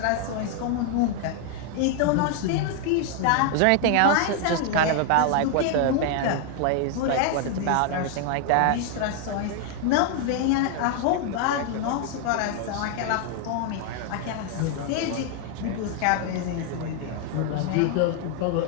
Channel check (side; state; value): both; different; correlation 0.00